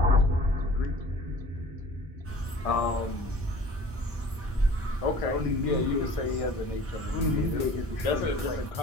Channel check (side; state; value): both; normal; correlation 0.46